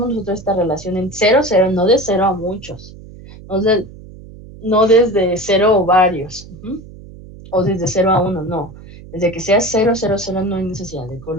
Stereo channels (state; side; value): noise; right; hum, 18 dB below the sound